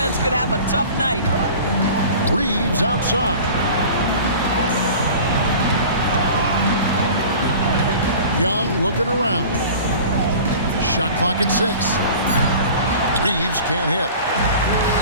could have a tough night. Reeves outside. Young looking around. Shot clock at 6. Reeves can't hit.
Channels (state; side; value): inverted; both; correlation -0.40